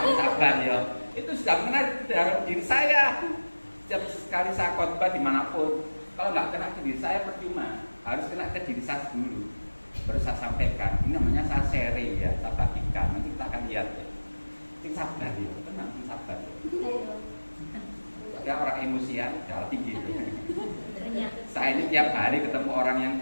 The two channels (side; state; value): both; inverted; correlation -1.00